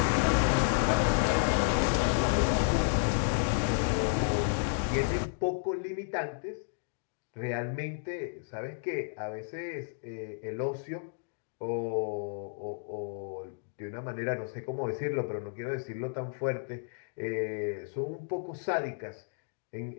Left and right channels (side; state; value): right; silent; digital silence